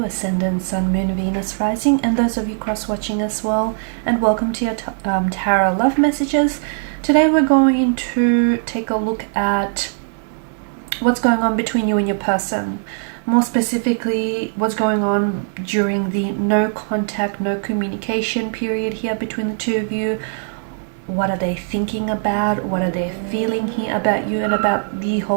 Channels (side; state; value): left; silent; digital silence